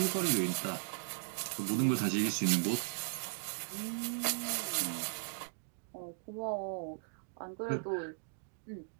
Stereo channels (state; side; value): silent; left; digital silence